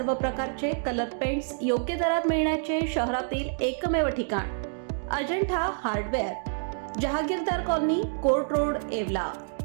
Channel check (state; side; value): silent; left; digital silence